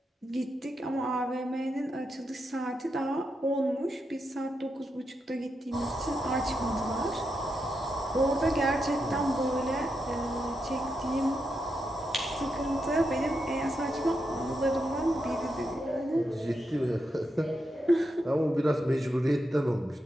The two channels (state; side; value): normal; both; correlation 0.85